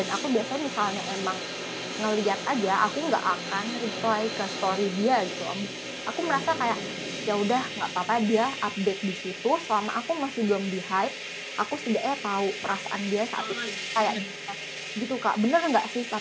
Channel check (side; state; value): both; identical; correlation 1.00